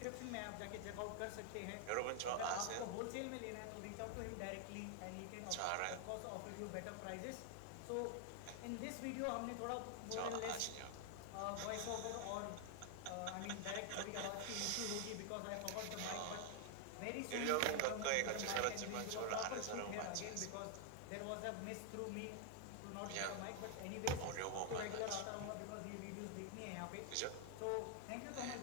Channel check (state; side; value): different; both; correlation 0.00